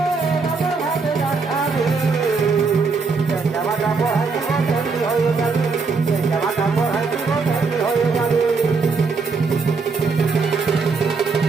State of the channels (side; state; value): left; quieter; 4.6 dB